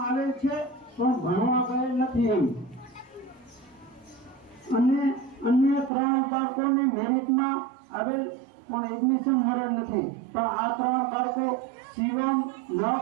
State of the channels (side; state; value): left; drops out; at 5.9 s